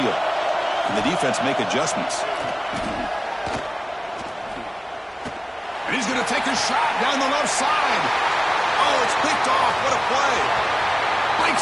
And the defense make adjustments. And he's going to take a shot down the left side. Oh, it's picked off. What a play.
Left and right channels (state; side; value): identical; both; correlation 1.00